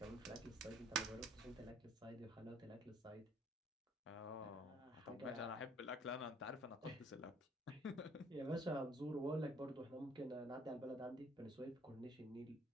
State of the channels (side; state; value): both; normal; correlation 0.60